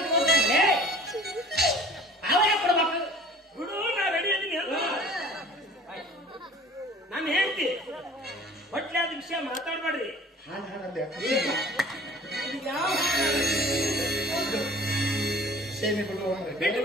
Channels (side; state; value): both; normal; correlation 0.47